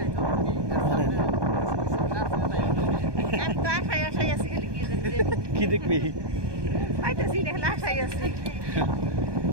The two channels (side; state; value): left; late; 1.2 ms